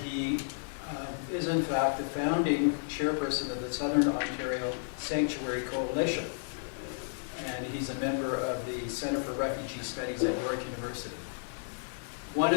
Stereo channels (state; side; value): silent; right; 56 dB below the other